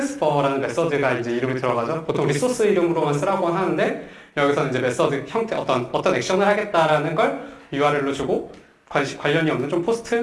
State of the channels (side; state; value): both; identical; correlation 1.00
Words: 메서드가 이제 이름이 들어가죠. 보통 리소스 이름으로만 쓰라고 하는데 여기서 이제 메서드 형태 어떤 액션을 하겠다라는 걸 URL로 주고 관련이 없는 좀